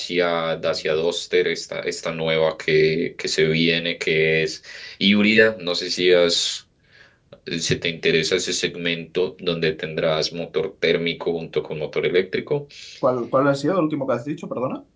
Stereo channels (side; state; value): both; identical; correlation 1.00